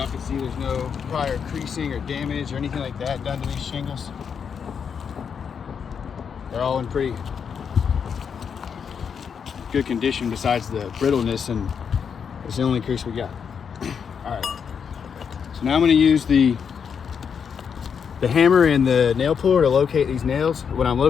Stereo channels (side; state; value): right; quieter; 6.9 dB